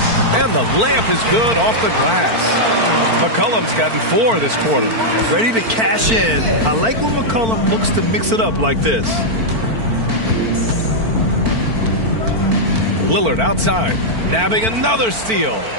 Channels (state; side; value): late; left; 4.4 ms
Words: And the layup is good off the glass. McCollum's gotten 4 this quarter. Ready to cash in. I like when McCollum looks to mix it up like this. Lillard outside, nabbing another steal.